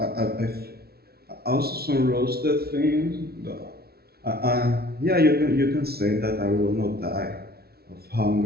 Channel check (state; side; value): late; left; 0.45 ms